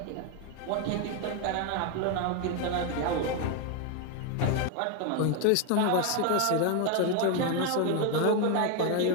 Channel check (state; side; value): different; both; correlation 0.01